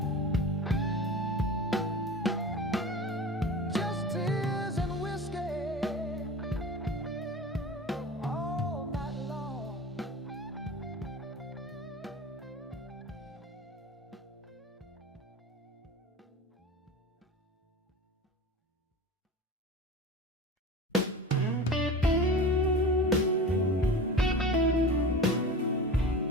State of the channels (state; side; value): normal; both; correlation 0.34